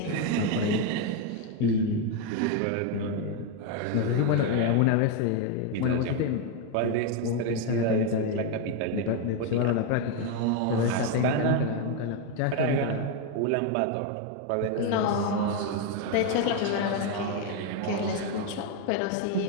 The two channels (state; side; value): different; both; correlation 0.02